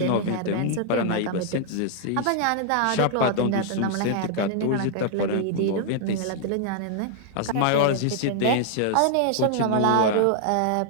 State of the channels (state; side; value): different; both; correlation -0.01